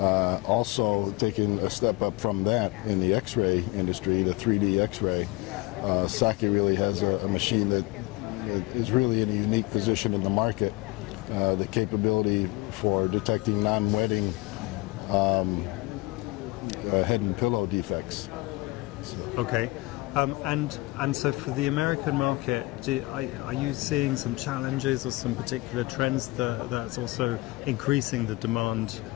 Also, taking a step up from that in the X-ray industry, the 3D X-ray, Saki really has a machine that is really in a unique position in the market. The capability for detecting non-wetting head and pillow defects. Okay, and so for the American market, are you seeing some challenges or some particular trends that's also increasing the demand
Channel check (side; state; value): right; quieter; 22.5 dB